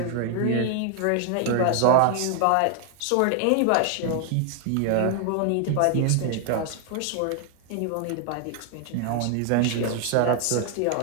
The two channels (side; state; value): both; different; correlation 0.00